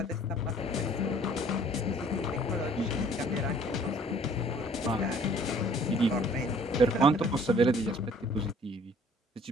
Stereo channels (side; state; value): both; normal; correlation 0.55